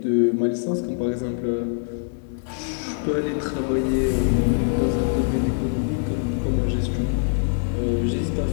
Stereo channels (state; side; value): silent; right; digital silence